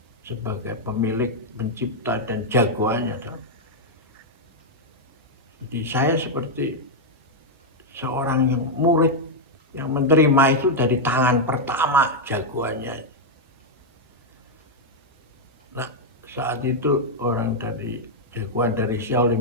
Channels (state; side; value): normal; both; correlation -0.01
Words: sebagai pemilik, pencipta, dan jagoannya. Jadi saya seperti seorang yang murid yang menerima itu dari tangan pertama jagoannya. Nah, saat itu orang dari jagoan dari